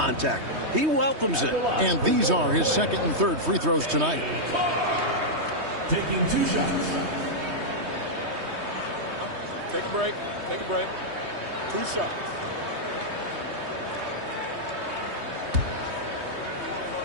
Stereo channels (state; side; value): late; left; 3.2 ms